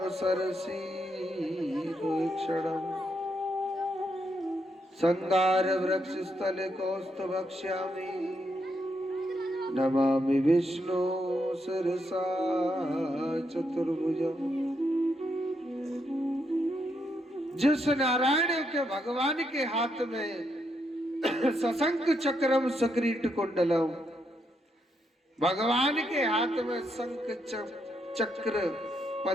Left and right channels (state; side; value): normal; both; correlation 0.79